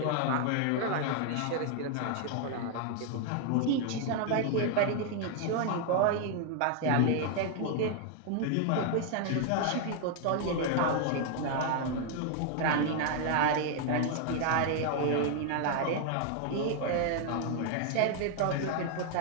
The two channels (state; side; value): different; both; correlation 0.00